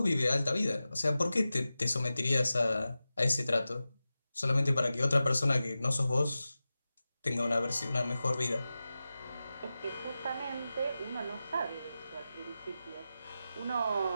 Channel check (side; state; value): both; inverted; correlation -0.94